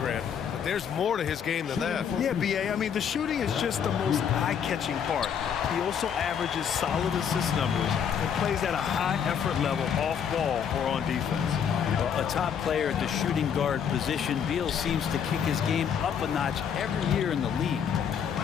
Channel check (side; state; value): right; quieter; 7.8 dB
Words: but there's more to his game than that. Yeah, B.A., I mean, the shooting is just the most eye-catching part. He also averages solid assist numbers and plays at a high effort level off ball or on defense. Well, a top player at the shooting guard position, Beal seems to kick his game up a notch every year in the league.